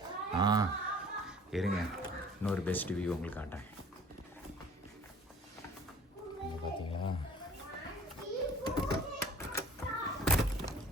இருங்க, இன்னொரு பெஸ்ட் வியூ உங்களுக்கு காட்டுறேன். பார்த்தீங்களா?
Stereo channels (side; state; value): both; normal; correlation 0.49